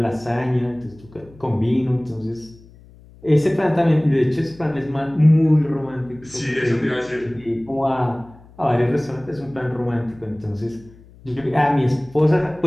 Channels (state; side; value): noise; left; hum, 24 dB below the sound